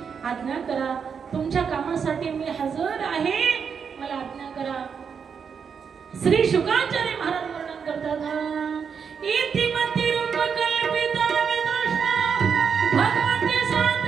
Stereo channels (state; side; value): quieter; left; 6.6 dB